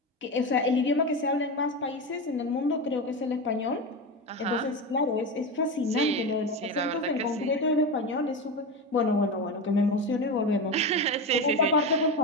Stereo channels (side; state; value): both; normal; correlation 0.19